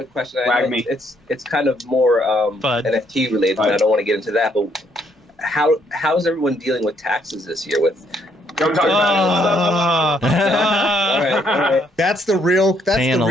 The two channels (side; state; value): both; normal; correlation 0.70